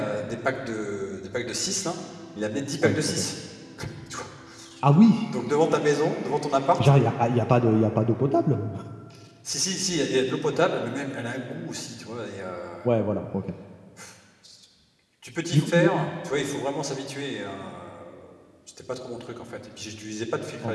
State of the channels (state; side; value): identical; both; correlation 1.00